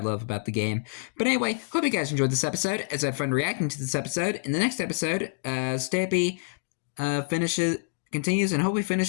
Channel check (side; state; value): right; silent; digital silence